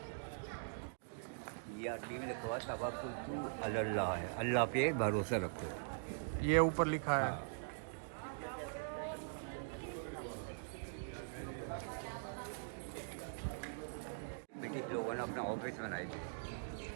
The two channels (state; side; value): silent; left; digital silence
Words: ये अरबी में लिखा हुआ तवक्कुल अल्लाह है, अल्लाह पे भरोसा रखो. ये ऊपर लिखा है. ब्रिटिश लोगों ने अपना ऑफिस बनाए थे.